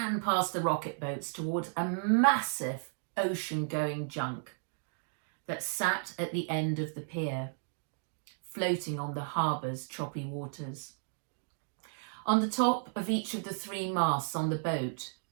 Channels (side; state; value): left; silent; digital silence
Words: past the rocket boats towards a massive ocean-going junk that sat at the end of the pier, floating on the harbour's choppy waters. On the top of each of the 3 masts on the boat,